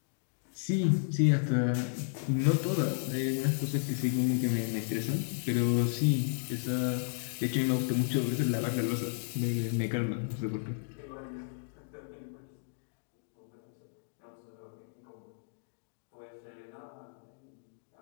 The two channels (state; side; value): silent; right; digital silence